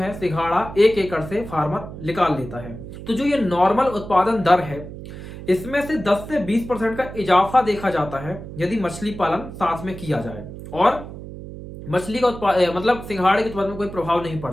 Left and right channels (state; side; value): noise; right; hum, 12 dB below the sound